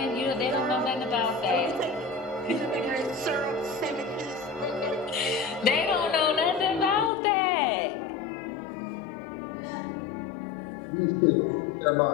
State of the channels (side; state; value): right; drops out; at 7.1 s